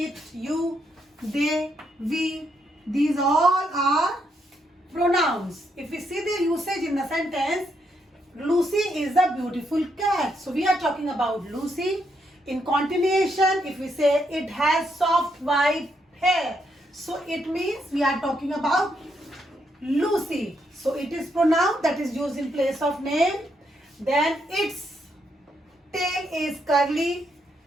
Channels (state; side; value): normal; both; correlation 0.77